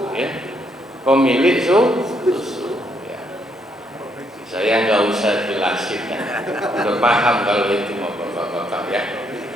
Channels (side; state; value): both; normal; correlation 0.73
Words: ya. Pemilik susu, ya. Saya nggak usah jelasin, ya. Udah paham kalau itu mau bapak-bapak, ya.